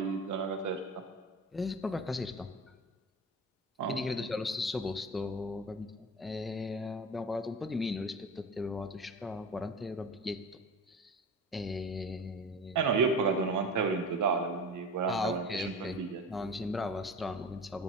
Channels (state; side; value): normal; both; correlation 0.33